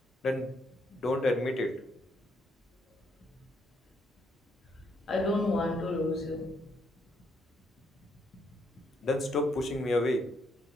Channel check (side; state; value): both; normal; correlation 0.74